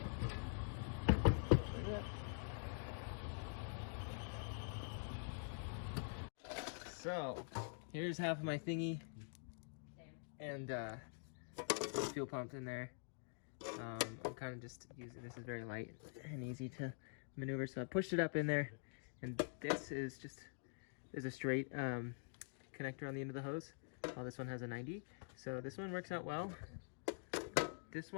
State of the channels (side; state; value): right; silent; digital silence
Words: Like that. So, here's half of my thingy. And fuel pump in there. I'm kind of just using, this is very light and easy to maneuver, so I pushed it up in there, and this is just, there's a straight connector on the end of the hose, while this one has a 90, so this one works out well. This